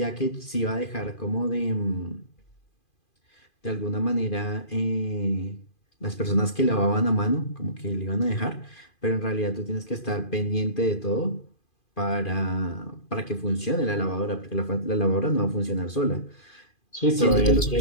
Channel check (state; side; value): late; right; 2.5 ms